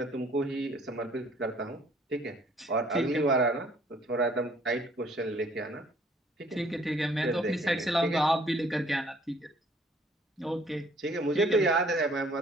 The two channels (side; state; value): both; normal; correlation 0.59